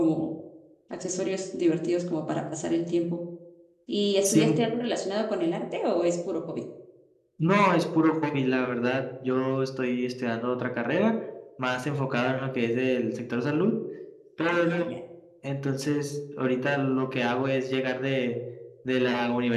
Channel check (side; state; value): both; identical; correlation 1.00